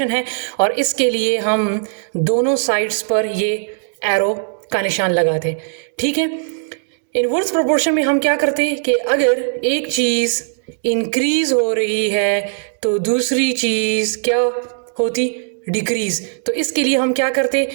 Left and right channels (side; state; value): left; silent; digital silence